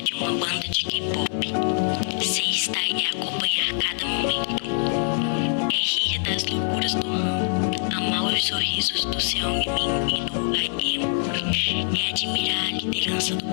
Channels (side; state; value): right; silent; 62 dB below the other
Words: de uma banda de K-pop. Ser style é acompanhar cada momento. É rir das loucuras do mundo, amar os sorrisos do Seungmin e do IM. É admirar a liderança do